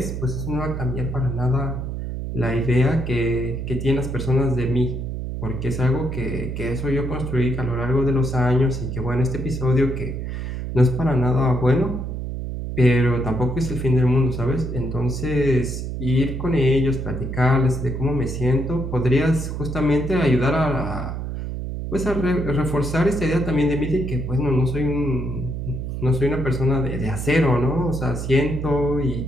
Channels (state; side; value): noise; right; hum, 5 dB below the sound